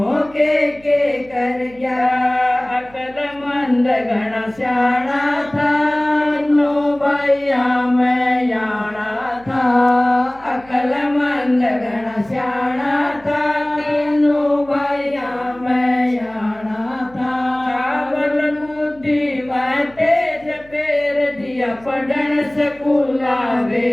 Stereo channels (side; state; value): right; noise; hum, 25 dB below the sound